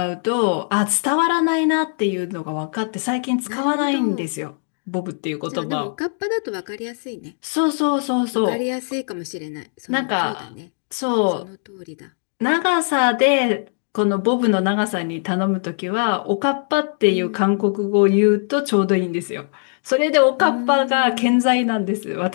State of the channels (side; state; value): right; silent; digital silence